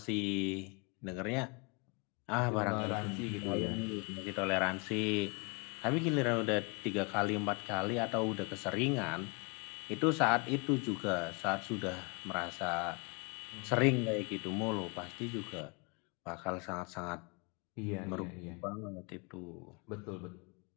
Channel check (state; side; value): quieter; right; 31.8 dB